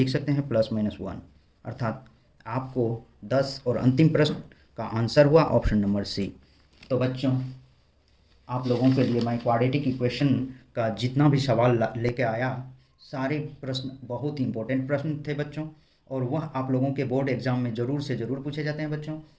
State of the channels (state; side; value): identical; both; correlation 1.00